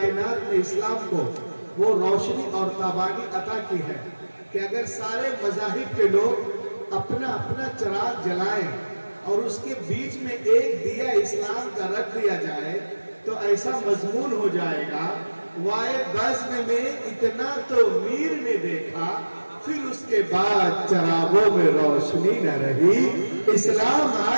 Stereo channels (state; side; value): inverted; both; correlation -1.00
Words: نے اسلام کو وہ روشنی اور تابانی عطا کی ہے کہ اگر سارے مذاہب کے لوگ اپنا اپنا چراغ جلائیں اور اس کے بیچ میں ایک دیا اسلام کا رکھ دیا جائے تو ایسا مضمون ہو جائے گا، وائے بزم میں اتنا تو میر نے دیکھا، پھر اس کے بعد چراغوں میں روشنی نہ رہی۔ اسلام